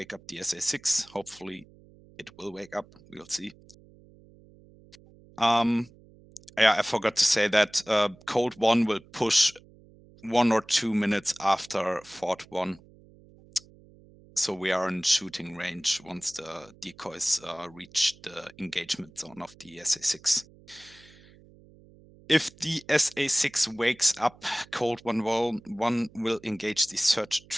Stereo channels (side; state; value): right; noise; hum, 25 dB below the sound